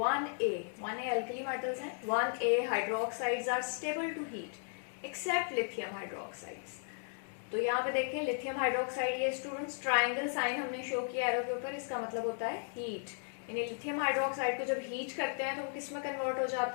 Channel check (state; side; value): silent; right; 54 dB below the other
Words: alkali metals हैं, 1A hydroxides are stable to heat except lithium hydroxides. तो यहाँ पे देखिए लिथियम हाइड्रोक्साइड, ये स्टूडेंट्स ट्रायंगल साइन हमने शो किया एरो के ऊपर, इसका मतलब होता है हीट, यानी लिथियम हाइड्रोक्साइड को जब हीट करते हैं तो वो किस में कन्वर्ट हो